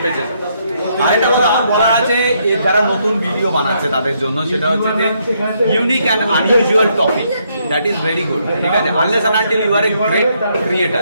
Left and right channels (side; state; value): both; inverted; correlation -0.74